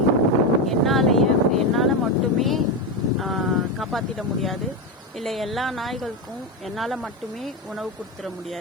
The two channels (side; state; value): both; normal; correlation 0.12